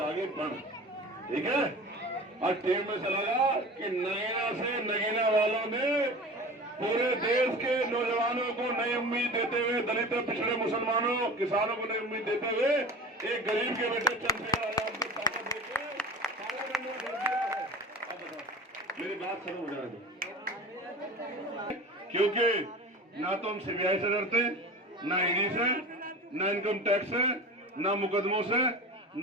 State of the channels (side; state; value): both; normal; correlation 0.35